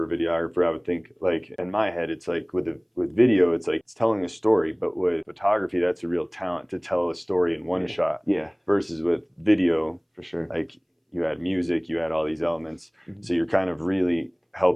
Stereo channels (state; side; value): identical; both; correlation 1.00